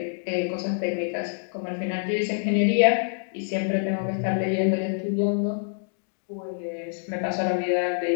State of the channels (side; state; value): right; silent; digital silence